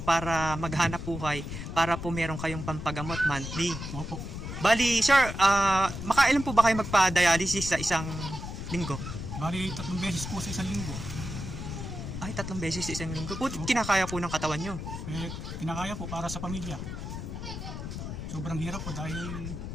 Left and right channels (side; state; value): left; noise; rumble, 7 dB below the sound